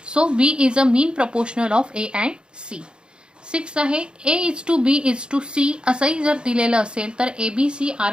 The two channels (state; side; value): late; left; 0.052 ms